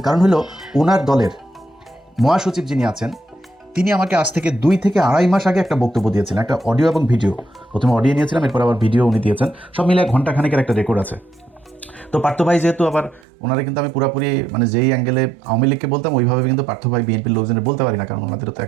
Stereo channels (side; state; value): left; drops out; at 13.2 s